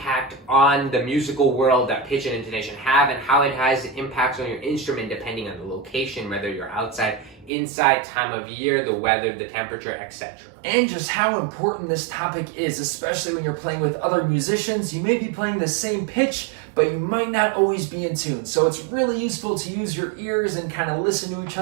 on the musical world that pitch and intonation have, and how it has impacts on your instrument depending on the location, whether you're outside, inside, time of year, the weather, the temperature, etc. And just how important this topic is, especially when you're playing with other musicians. You may be playing the same pitch, but you might not always be in tune. So it's really useful to use your ears and kind of listen to each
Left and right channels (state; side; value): drops out; left; at 7.5 s